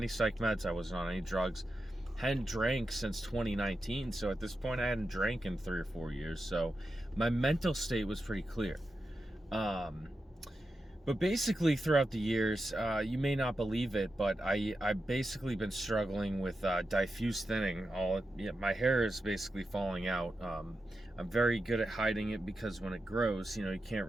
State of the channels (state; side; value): normal; both; correlation 0.89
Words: psych meds. I wasn't on any drugs. Hadn't drank since 2019. So at this point, I hadn't drank in 3 or 4 years. So my mental state was pretty clear. But basically throughout the years, you may not believe it, but I've basically been struggling with diffuse thinning. My hair is basically falling out. I'm very good at hiding it because when it grows, you can't